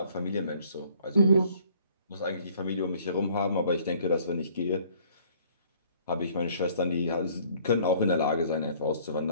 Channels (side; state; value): both; inverted; correlation -0.58